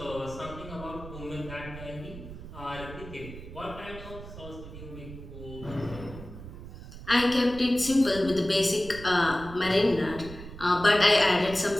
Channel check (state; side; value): noise; right; rumble, 13 dB below the sound